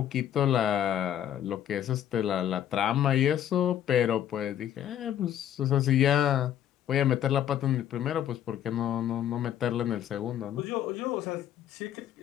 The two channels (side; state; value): right; quieter; 10.7 dB